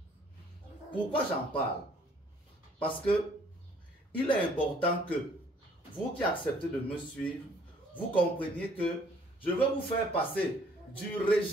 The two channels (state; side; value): normal; both; correlation 0.60